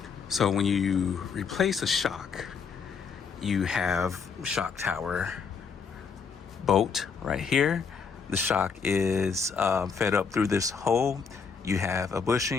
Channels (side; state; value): right; quieter; 5.8 dB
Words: So when you replace a shock, you have shock tower bolt right here. The shock is fed up through this hole. You have a